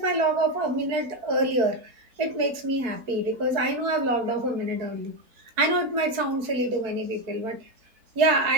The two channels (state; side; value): late; left; 4.5 ms